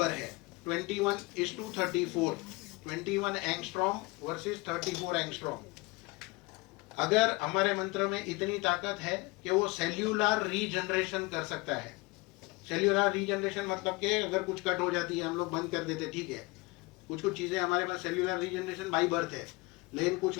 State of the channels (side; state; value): right; quieter; 23.7 dB